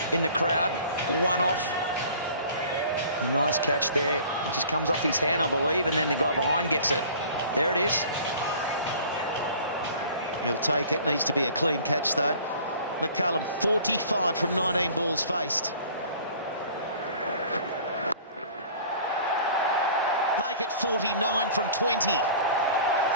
in the crowd. One off. A nice catch there. It just comes off his hand, I believe, and then the guy behind gets it. There it is. He'll take it. Needs to be a clean catch, though. McCullum, 45 from 19 balls faced. Make it 49 from 20.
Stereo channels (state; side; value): inverted; both; correlation -0.47